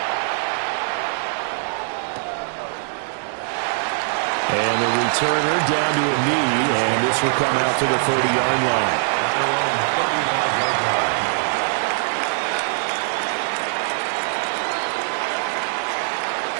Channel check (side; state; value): left; silent; 55 dB below the other